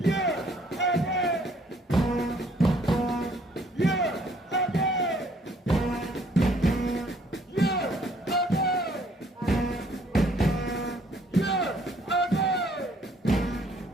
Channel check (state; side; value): normal; both; correlation 0.62